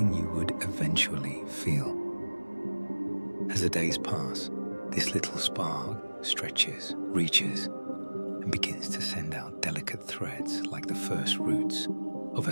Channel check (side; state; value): both; inverted; correlation -1.00